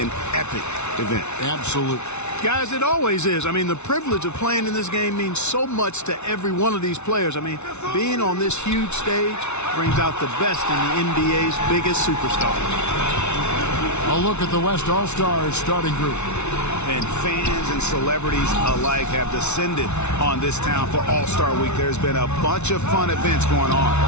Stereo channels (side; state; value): right; late; 0.82 ms